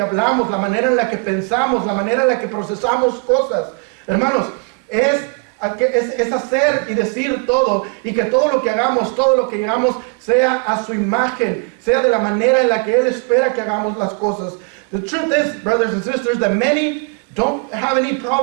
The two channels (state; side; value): quieter; left; 34.2 dB